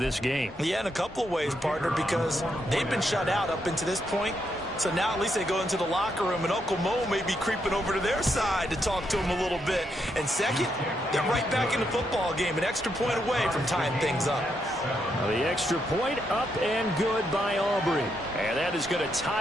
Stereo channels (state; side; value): normal; both; correlation 0.79